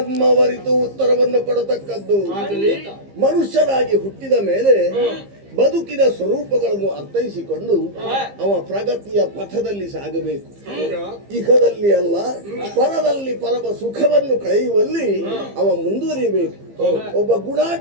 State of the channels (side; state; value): left; late; 15 ms